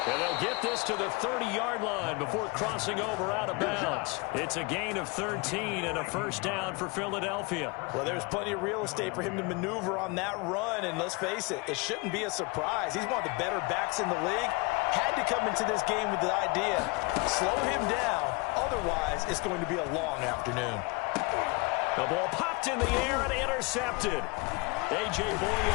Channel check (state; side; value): quieter; right; 26.5 dB